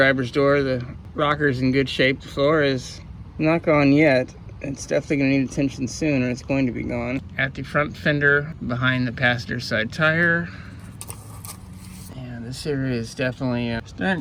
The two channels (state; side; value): identical; both; correlation 1.00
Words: door, the rocker's in good shape. The floor is not gone yet. It's definitely going to need attention soon, or it's going to be gone. At the front fender, behind the passenger side tire. This area is definitely